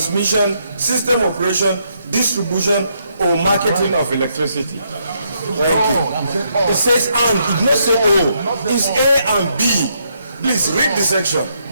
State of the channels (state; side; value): inverted; both; correlation -0.76